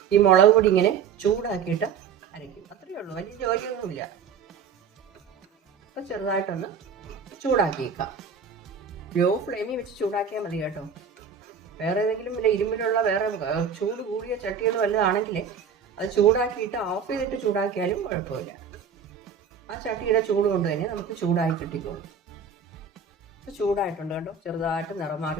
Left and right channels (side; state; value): left; quieter; 6.3 dB